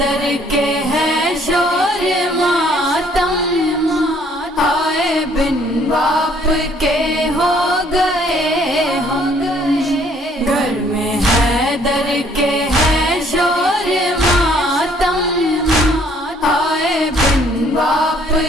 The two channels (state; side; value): normal; both; correlation 0.62